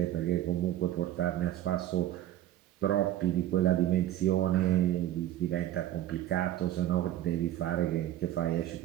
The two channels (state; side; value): quieter; left; 13.0 dB